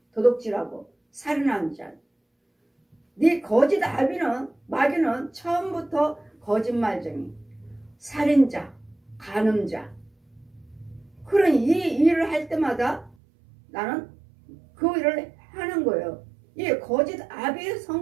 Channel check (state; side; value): drops out; left; at 13.2 s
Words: 도둑질하고 살인하는 자. 네 거짓 아비는 마귀는 처음부터 거짓말쟁이, 살인자, 간음자. 그러니 이 일을 할 때마다 나는 그 일을 하는 거예요. 이 거짓 아비의